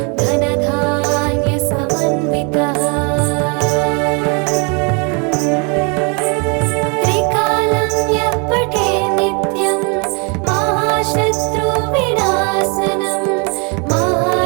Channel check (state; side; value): quieter; left; 34.2 dB